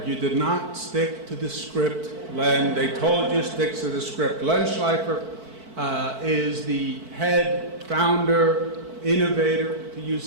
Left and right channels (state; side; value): late; left; 4.5 ms